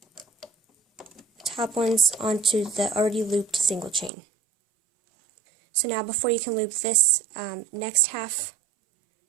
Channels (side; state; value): left; drops out; at 4.1 s